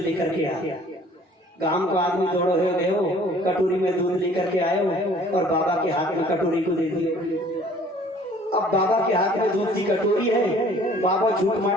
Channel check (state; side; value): normal; both; correlation 0.54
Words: के आ। गांव का आदमी दौड़ो हो गए हो, कटोरी में दूध लेकर के आए हो और बाबा के हाथ में कटोरी को दे दिए। अब बाबा के हाथ में दूध की कटोरी है, बाबा झूठ